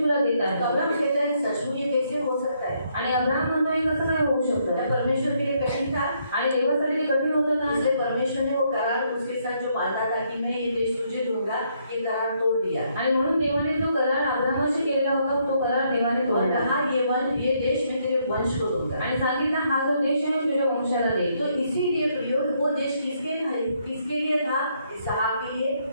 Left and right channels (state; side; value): inverted; both; correlation -0.73